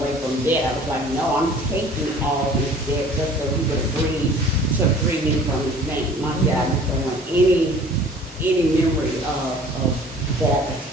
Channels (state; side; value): normal; both; correlation 0.49